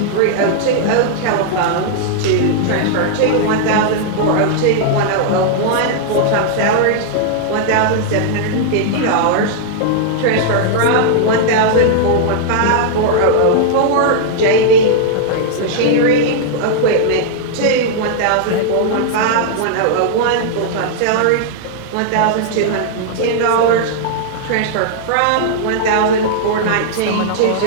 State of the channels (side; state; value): both; different; correlation -0.01